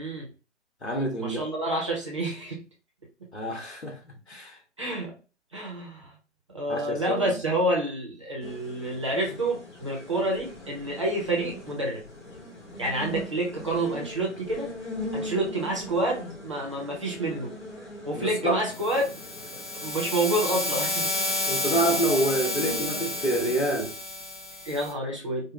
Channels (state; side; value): normal; both; correlation 0.31